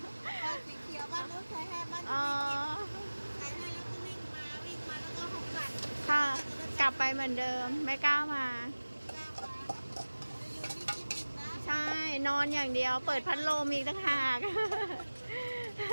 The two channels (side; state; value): both; inverted; correlation -1.00